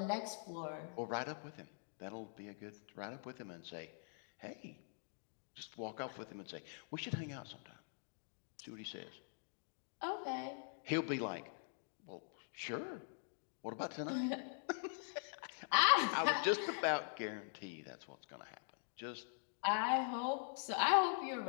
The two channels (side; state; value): right; silent; digital silence